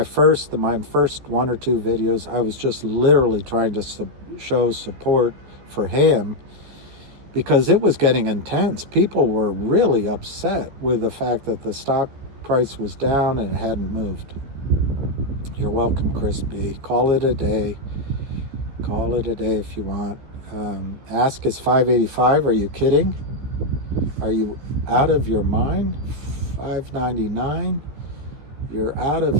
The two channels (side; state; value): left; late; 14 ms